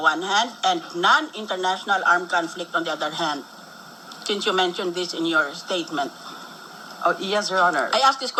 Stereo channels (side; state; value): both; identical; correlation 1.00